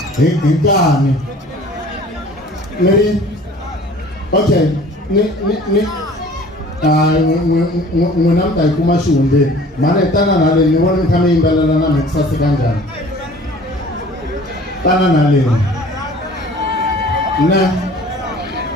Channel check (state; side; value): normal; both; correlation 0.48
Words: hi nkani ni ri okay n'wina mi ta yi kuma xihundleni mhani hi tana na leni ni vona mi kha mi yimbelela na mi ku saseka njhani tana na leni